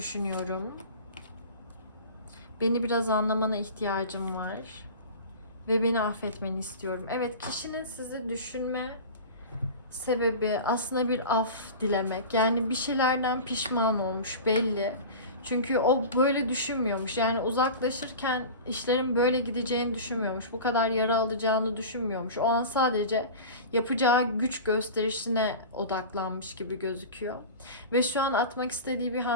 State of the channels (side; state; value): both; inverted; correlation -0.33